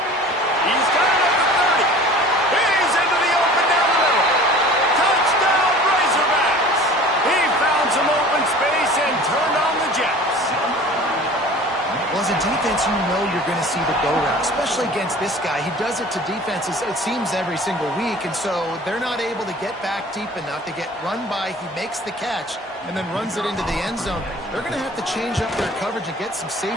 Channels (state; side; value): normal; both; correlation 0.44